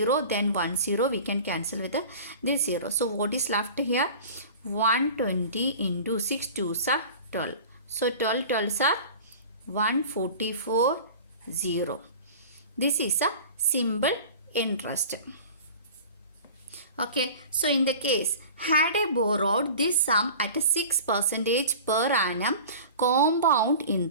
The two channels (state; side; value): inverted; both; correlation -0.39